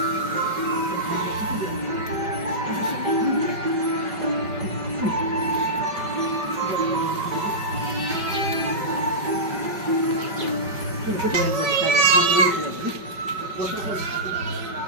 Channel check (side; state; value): left; late; 5.2 ms